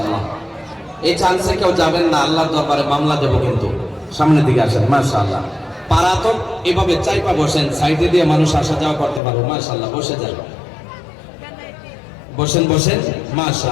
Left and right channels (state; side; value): drops out; right; at 9.2 s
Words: এই চান্সে কেউ যাবেন না, আল্লাহর দরবারে মামলা দেব কিন্তু। সামনের দিকে আসেন। মাশাআল্লাহ, পারা তো এভাবে চাইপা বসেন, সাইডে দিয়ে মানুষ আসা যাওয়া করতে পারবে। মাশাআল্লাহ, বসে যান, বসেন বসেন।